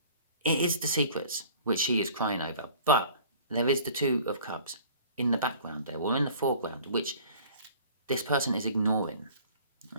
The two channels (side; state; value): both; inverted; correlation -0.48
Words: It is the secrets which she is crying over, but there is the Two of Cups in the background there, or in the foreground, which this person is ignoring.